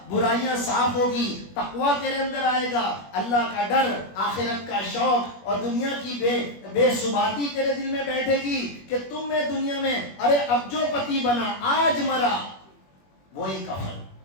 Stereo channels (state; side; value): late; right; 21 ms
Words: برائیاں صاف ہوگی، تقویٰ تیرے اندر آئے گا، اللہ کا ڈر، آخرت کا شوق، اور دنیا کی بے ثباتی تیرے دل میں بیٹھے گی کہ تم میں دنیا میں، ارے اب جو پتی بنا آج مرا، وہی کفن،